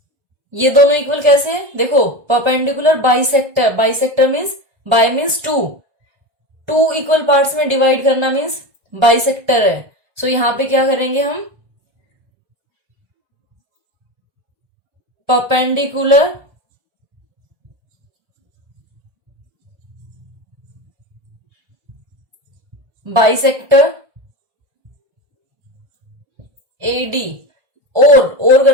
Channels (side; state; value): left; late; 1.3 ms